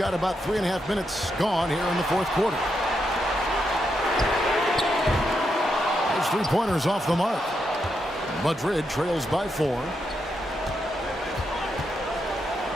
about 3.5 minutes gone here in the fourth quarter. Those 3-pointers off the mark. Madrid trails by 4.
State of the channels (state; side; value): normal; both; correlation 0.82